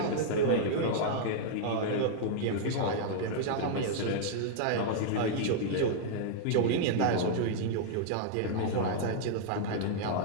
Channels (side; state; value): both; different; correlation -0.01